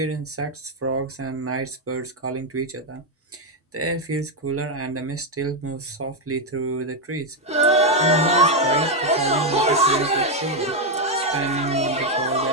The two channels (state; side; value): normal; both; correlation 0.03